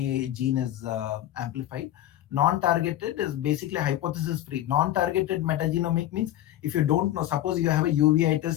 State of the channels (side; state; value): right; quieter; 13.3 dB